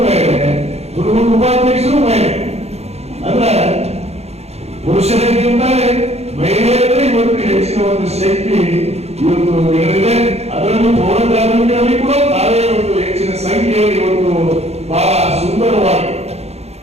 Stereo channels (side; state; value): left; late; 0.31 ms